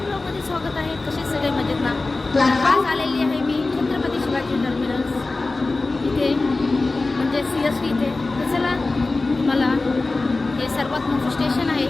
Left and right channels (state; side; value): quieter; right; 3.4 dB